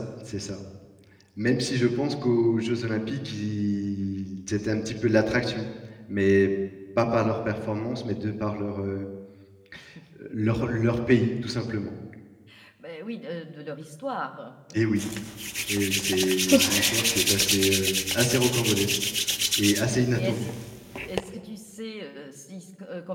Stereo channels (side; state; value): both; identical; correlation 1.00